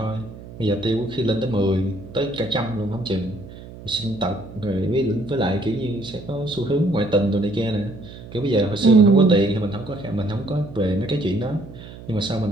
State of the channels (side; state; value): right; noise; hum, 16 dB below the sound